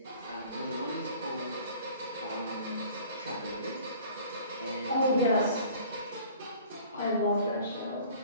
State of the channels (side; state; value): both; inverted; correlation -0.49